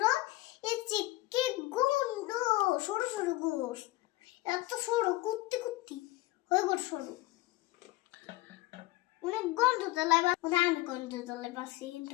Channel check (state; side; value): quieter; right; 18.6 dB